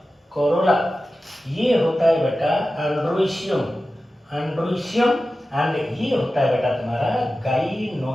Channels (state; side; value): normal; both; correlation 0.94